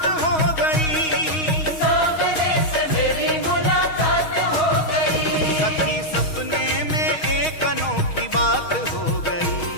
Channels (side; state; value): right; late; 6.3 ms